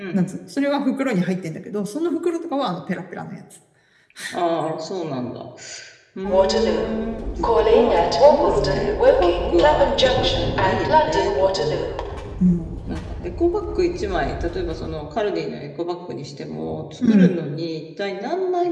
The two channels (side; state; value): both; identical; correlation 1.00